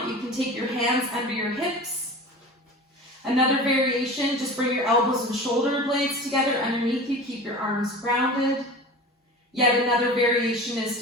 you can take your hands under your hips. Another variation, just bring your elbows and shoulder blades together underneath you. Keep your arms grounded. Yet another variation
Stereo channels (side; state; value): both; normal; correlation 0.35